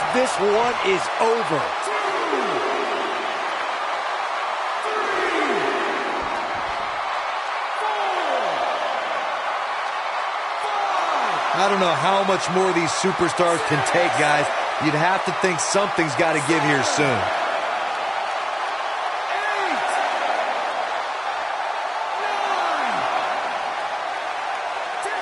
This one is over. I don't know how much more these superstars can take, guys. You'd have to think something's got to give here soon.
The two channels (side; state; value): both; identical; correlation 1.00